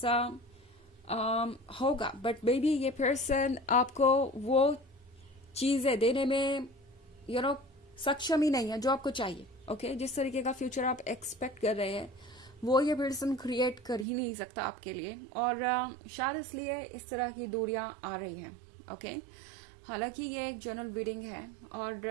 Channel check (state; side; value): drops out; left; at 14.1 s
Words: होगा, बट मे बी ये पर्सन आपको वो चीज़ें देने में सक्षम ही नहीं है जो आपको चाहिए। ओके, जिस तरीके का फ्यूचर आप एक्सपेक्ट कर रहे हैं वो ये पर्सन क्रिएट कर ही नहीं सकता आपके लिए, और शायद इसलिए इस तरह की दूरियां आ रही हैं। ओके, हालांकि ये एक जनरल रीडिंग है और